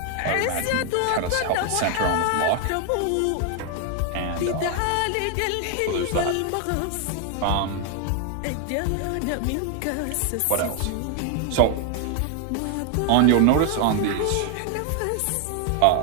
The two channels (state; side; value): different; both; correlation 0.00